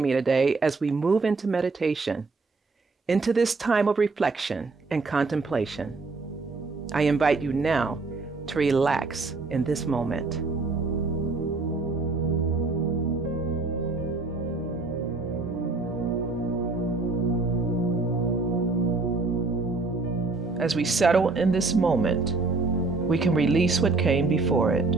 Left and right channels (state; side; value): quieter; left; 3.8 dB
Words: me today as we move into meditation, into this time of reflection and contemplation. I invite you now to relax in this moment. As we settle in this moment, we can release what came before it.